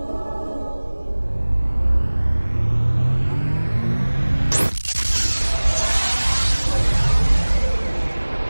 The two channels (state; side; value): inverted; both; correlation -1.00